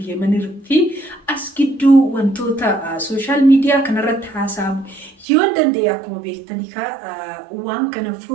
Yemenii fi as gidduu wantoota sooshaal miidiyaa kanarratti haasa'amu yoo danda'e akkuma beektanii waan kana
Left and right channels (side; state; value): left; drops out; at 5.2 s